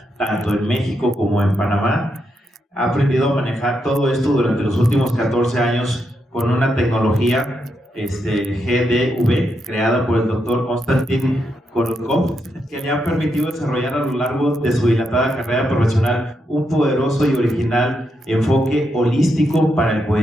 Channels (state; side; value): normal; both; correlation 0.82